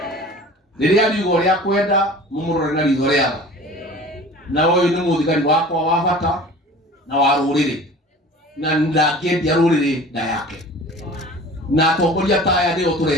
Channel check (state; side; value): normal; both; correlation 0.42